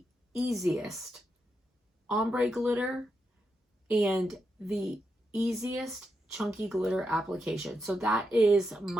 easiest ombre glitter and the easiest chunky glitter application. So that is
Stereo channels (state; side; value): normal; both; correlation 0.85